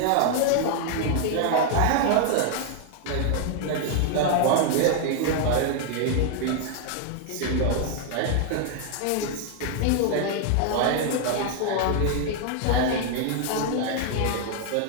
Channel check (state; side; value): different; both; correlation 0.00